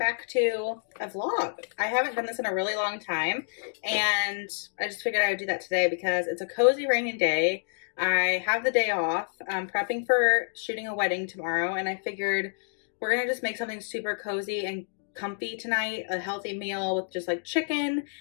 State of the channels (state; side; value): silent; right; digital silence